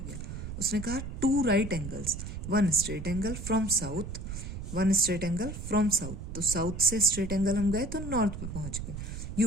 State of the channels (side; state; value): right; noise; rumble, 7 dB below the sound